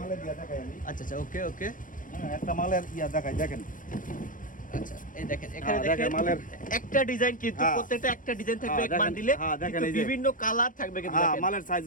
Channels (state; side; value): late; right; 0.39 ms